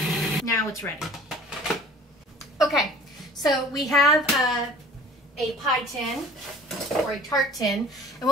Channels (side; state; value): both; normal; correlation 0.47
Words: now it's ready. Okay, so we have a pie tin or a tart tin, and